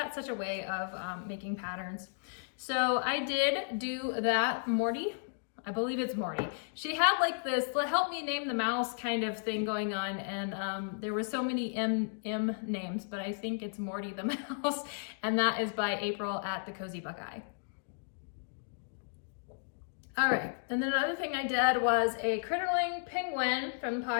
such a way of making patterns. So I did do that. Morty, I believe it's Morty. She had like this help me name the mouse kind of thing going on, and there were so many M names, but I think it's Morty the mouse, and that is by April at the Cozy Buckeye. All right, and then another thing I did was a Critterling penguin from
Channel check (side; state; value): right; silent; digital silence